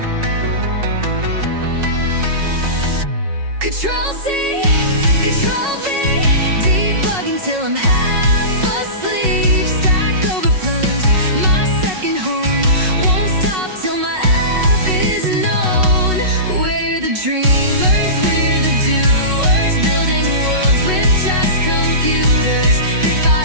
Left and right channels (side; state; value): left; late; 5.4 ms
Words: Control C, Control V, debugging till I'm half asleep. Stack overflows, my second home. Won't stop till my app is known. We're the dreamers, we're the doers, building worlds with just computers. Bit